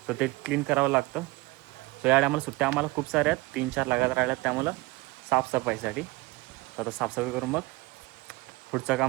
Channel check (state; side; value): quieter; left; 22.8 dB